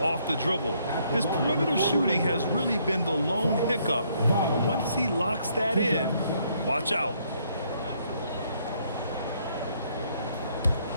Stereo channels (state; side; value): inverted; both; correlation -0.69